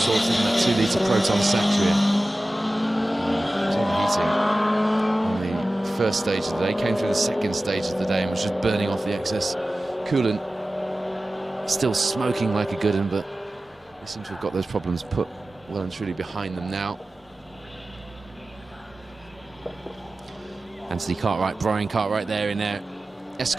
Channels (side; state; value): both; normal; correlation 0.95